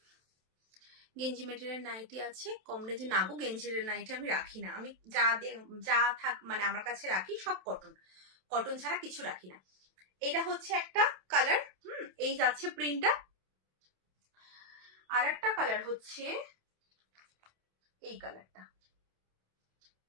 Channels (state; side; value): late; left; 27 ms